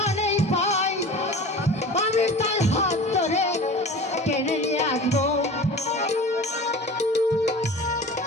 পাই আমি তার হাত ধরে টেনে নিয়ে আসবো।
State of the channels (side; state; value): both; normal; correlation 0.37